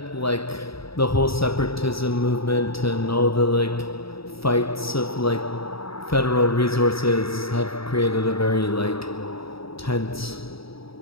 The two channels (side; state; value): right; late; 0.76 ms